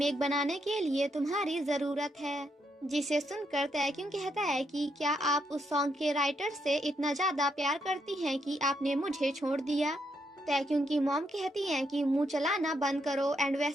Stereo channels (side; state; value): both; normal; correlation 0.78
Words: बनाने के लिए तुम्हारी जरूरत है, जिसे सुनकर तैक्युंग कहता है कि क्या आप उस सॉन्ग के राइटर से इतना ज्यादा प्यार करती हैं कि आपने मुझे छोड़ दिया। तैक्युंग की मॉम कहती हैं कि मुंह चलाना बंद करो, एंड